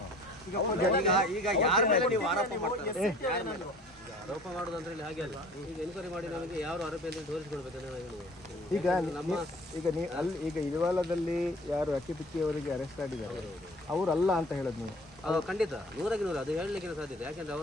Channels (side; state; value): both; normal; correlation 0.48